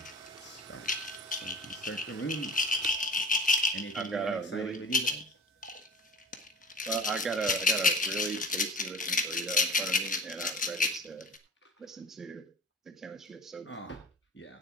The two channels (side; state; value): both; normal; correlation 0.37